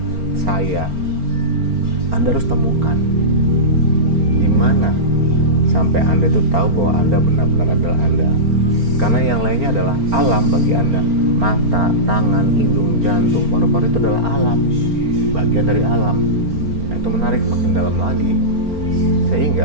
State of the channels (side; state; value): left; late; 4.4 ms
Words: saya. Anda harus temukan di mana sampai Anda itu tahu bahwa Anda benar-benar adalah Anda. Karena yang lainnya adalah alam bagi Anda. Mata, tangan, hidung, jantung, paru-paru itu adalah alam, bagian dari alam. Nah, itu menarik, makin dalam lagi.